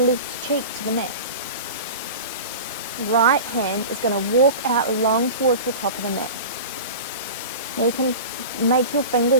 cheek to the mat. Right hand is going to walk out along towards the top of the mat. Now you can make your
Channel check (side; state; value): both; inverted; correlation -0.32